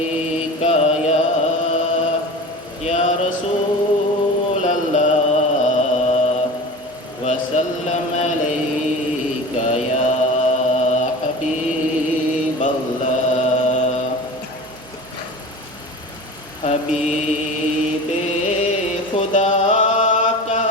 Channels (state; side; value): normal; both; correlation 0.34